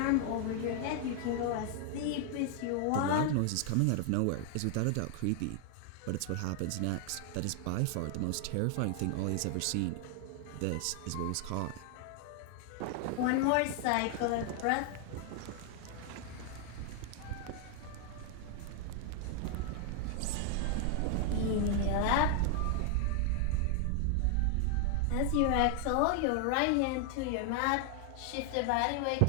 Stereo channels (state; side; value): different; both; correlation 0.00